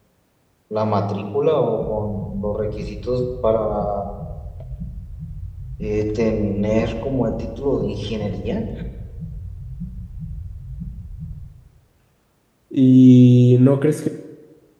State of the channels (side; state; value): both; identical; correlation 1.00